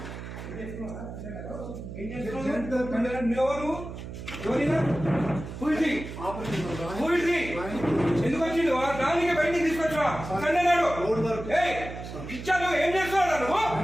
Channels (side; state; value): right; noise; hum, 10 dB below the sound